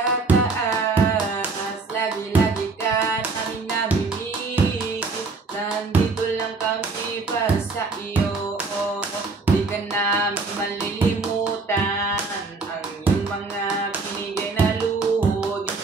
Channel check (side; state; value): left; quieter; 4.0 dB